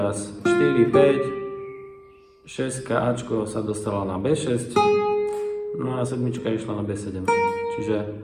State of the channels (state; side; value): identical; both; correlation 1.00